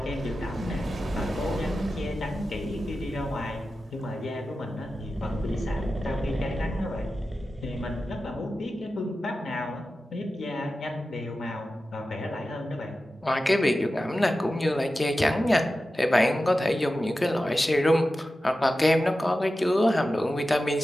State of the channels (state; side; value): normal; both; correlation 0.93